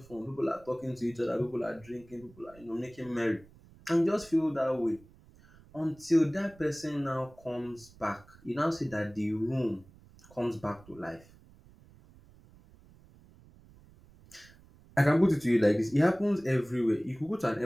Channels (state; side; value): noise; right; rumble, 25 dB below the sound